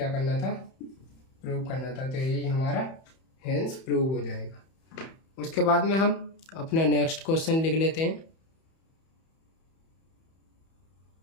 करना था, प्रूव करना था, तो यही हमारा हेंस प्रूव हो जाएगा। उसके बाद में हम अपना नेक्स्ट क्वेश्चन लिख लेते हैं।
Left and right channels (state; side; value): late; right; 31 ms